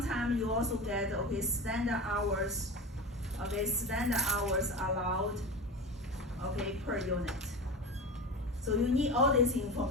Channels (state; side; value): normal; both; correlation 0.28